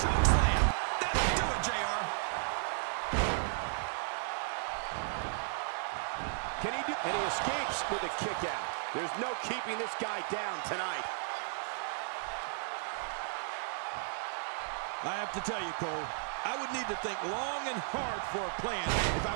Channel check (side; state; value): left; silent; digital silence